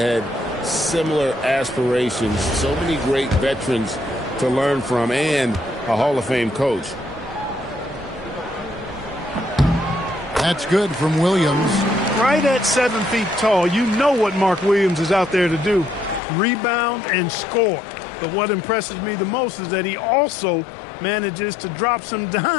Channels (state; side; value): drops out; right; at 16.2 s